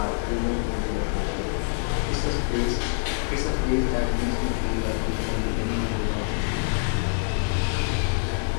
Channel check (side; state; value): right; silent; digital silence